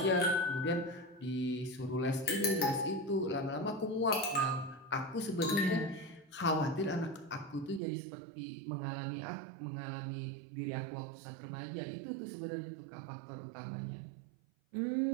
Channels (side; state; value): left; drops out; at 7.8 s